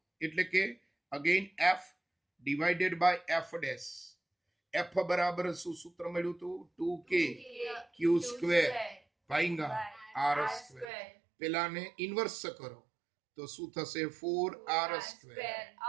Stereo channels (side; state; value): left; drops out; at 10.9 s